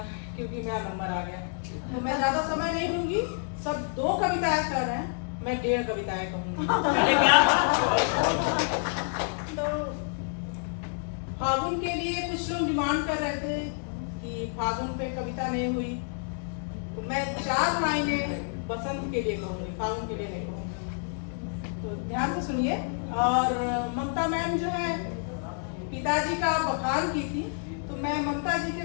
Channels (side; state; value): right; silent; 59 dB below the other